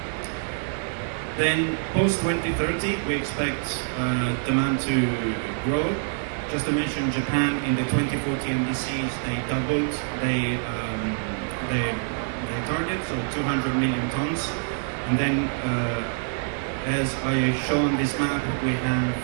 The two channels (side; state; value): left; silent; 61 dB below the other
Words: Then post-2030, we expect demand to grow. Just to mention, Japan in the 2040 NDCs, they doubled their target, so 200 million tons. And then, as I show on this map, we have